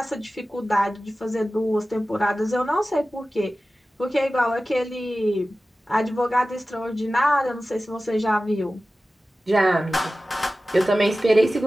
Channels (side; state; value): both; normal; correlation 0.96